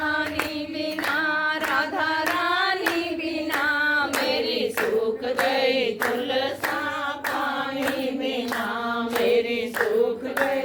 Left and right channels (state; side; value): identical; both; correlation 1.00